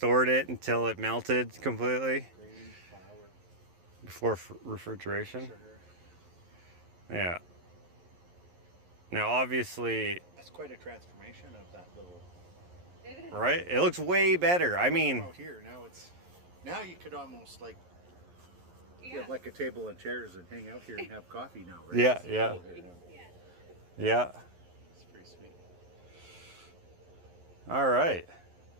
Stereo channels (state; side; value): late; left; 11 ms